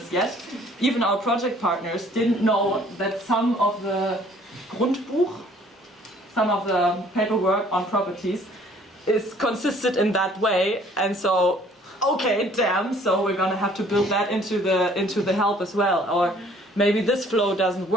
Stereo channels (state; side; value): normal; both; correlation 0.57